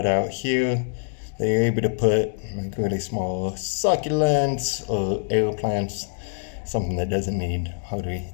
here that you're able to put like really small succulents or air plants, something that doesn't need hardly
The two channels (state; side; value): silent; right; digital silence